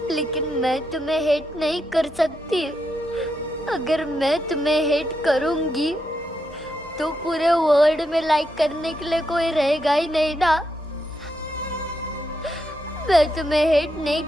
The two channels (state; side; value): normal; both; correlation 0.82